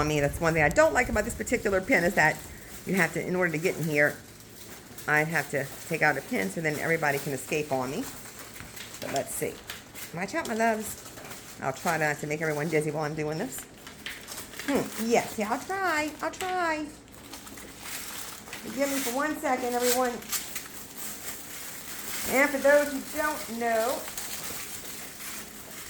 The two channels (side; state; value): both; identical; correlation 1.00